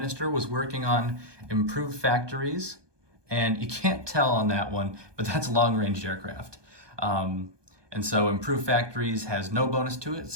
was working on improved factories, and you can't tell on that one, but that's long-range aircraft. And so improved factories has no bonus to it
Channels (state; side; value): late; left; 1.2 ms